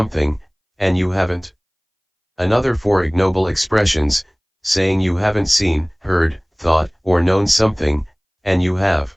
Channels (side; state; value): both; identical; correlation 1.00